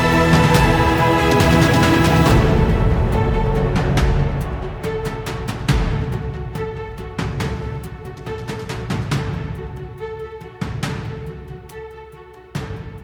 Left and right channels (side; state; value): both; identical; correlation 1.00